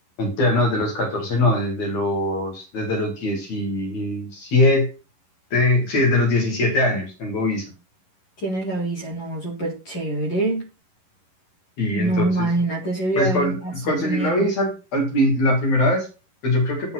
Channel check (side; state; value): right; late; 11 ms